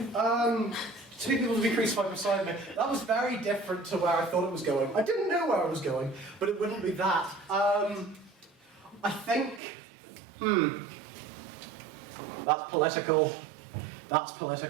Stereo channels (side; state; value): left; drops out; at 9.6 s